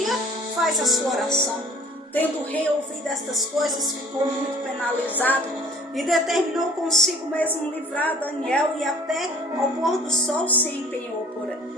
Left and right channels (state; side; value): normal; both; correlation 0.51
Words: faz a sua oração. Tendo o rei ouvido estas coisas, ficou muito penalizado e determinou consigo mesmo livrar Daniel, e até ao pôr do sol se empenhou